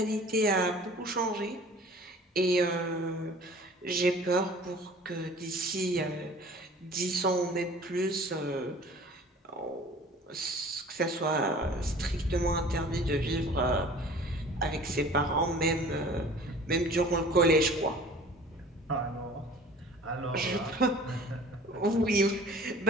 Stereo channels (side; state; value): both; normal; correlation 0.46